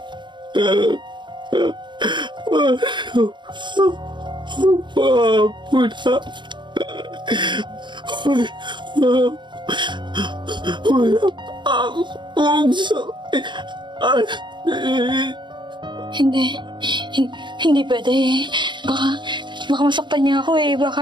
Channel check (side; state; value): left; late; 0.22 ms